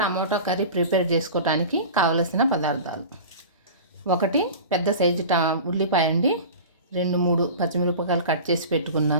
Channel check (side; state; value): both; inverted; correlation -0.35